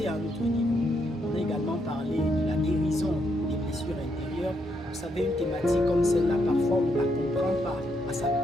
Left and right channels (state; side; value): normal; both; correlation 0.77